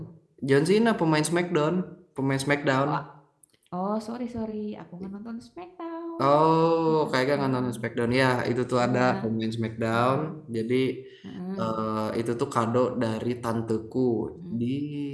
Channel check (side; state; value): both; identical; correlation 1.00